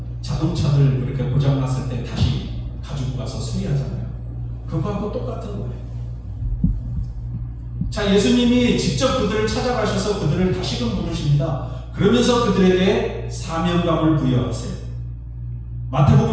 자동차들 이렇게 고장났을 때 다시 가지고 가서 수리하잖아요. 그거하고 똑같은 거예요. 자, 예수님이 직접 그들을 찾아가셔서 그들을 다시금 부르십니다. 그러면서 그들에게 사명감을 부여하세요.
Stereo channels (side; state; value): both; identical; correlation 1.00